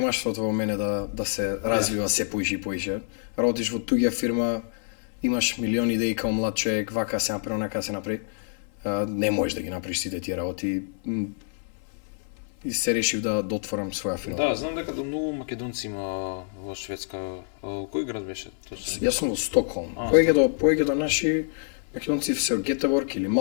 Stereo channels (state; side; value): silent; right; 57 dB below the other